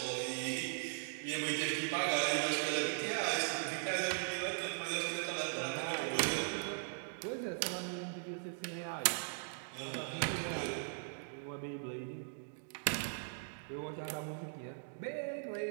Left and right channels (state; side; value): silent; left; digital silence